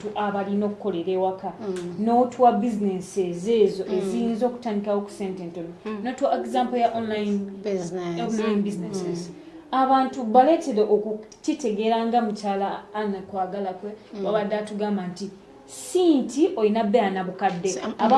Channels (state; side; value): identical; both; correlation 1.00